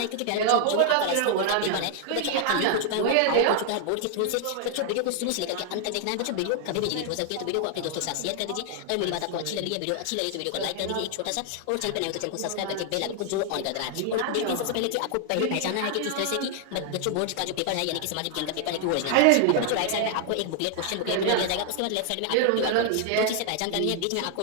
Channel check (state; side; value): different; both; correlation 0.00